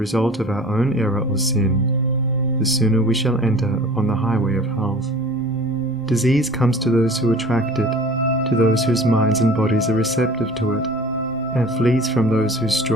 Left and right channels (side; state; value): left; noise; rumble, 23 dB below the sound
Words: of our own error or sin, the sooner we shall enter upon the highway of health. Disease comes to those who attract it, to those whose minds and bodies are receptive to it, and flees from those whose